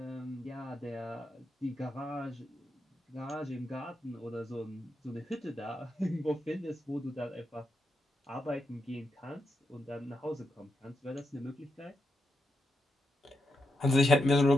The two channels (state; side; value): normal; both; correlation 0.85